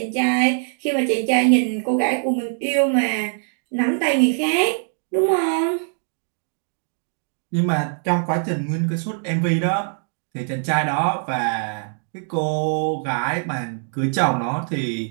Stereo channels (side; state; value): left; silent; 57 dB below the other